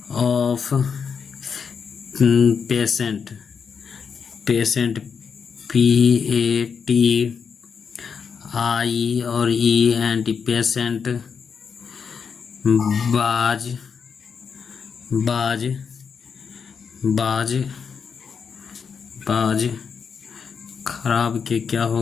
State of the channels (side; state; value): right; quieter; 6.3 dB